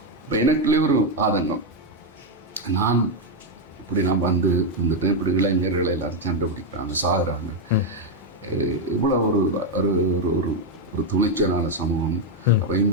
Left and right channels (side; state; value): both; normal; correlation 0.02